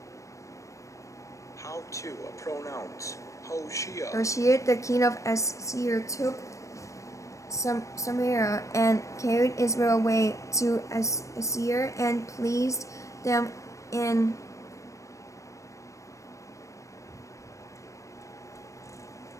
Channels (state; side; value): late; right; 0.15 ms